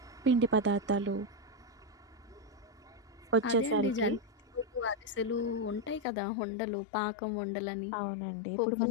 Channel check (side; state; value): right; drops out; at 6.1 s